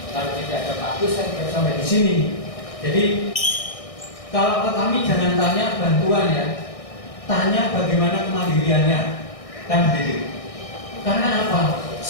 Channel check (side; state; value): right; late; 1.6 ms